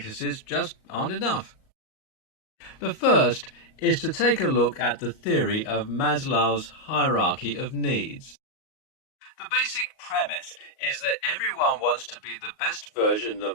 just aren't enough. The first is to take a look at the theory of Maslow's hierarchy of needs. The basic premise is that everyone wants to be the best version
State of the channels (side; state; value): right; late; 38 ms